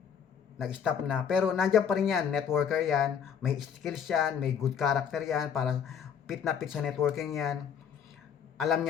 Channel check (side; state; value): right; quieter; 7.7 dB